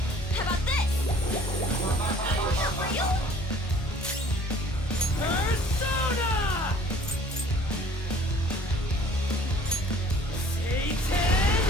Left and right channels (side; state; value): both; normal; correlation 0.53